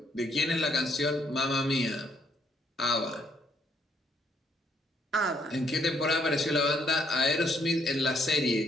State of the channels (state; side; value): normal; both; correlation 0.71